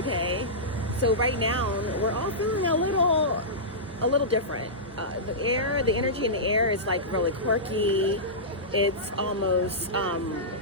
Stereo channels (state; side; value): normal; both; correlation -0.16